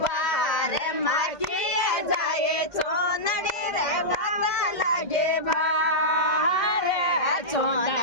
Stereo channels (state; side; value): late; right; 2.1 ms